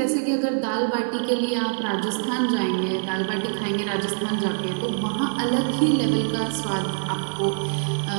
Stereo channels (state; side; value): silent; left; 62 dB below the other